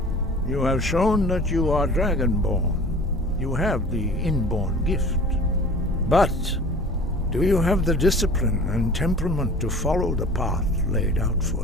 You have shown that you are Dragonborn. You have the inborn gift. But do you have the discipline and temperament to follow the path laid out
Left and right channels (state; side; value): normal; both; correlation 0.43